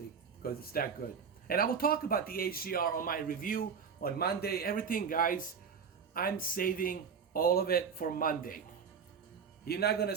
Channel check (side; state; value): left; quieter; 6.4 dB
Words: because it's that good. And I will talk about the HDR on my review on Monday. Everything, guys, I'm saving all of it for Monday. You're not gonna